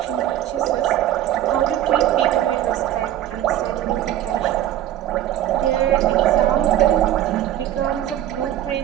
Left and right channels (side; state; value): left; quieter; 12.5 dB